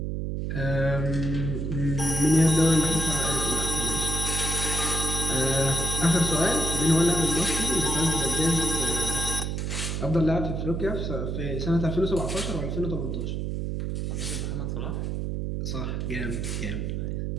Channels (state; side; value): noise; right; hum, 2 dB below the sound